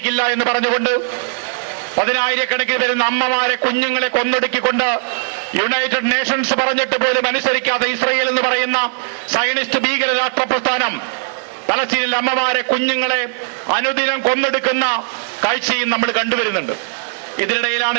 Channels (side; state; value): left; silent; digital silence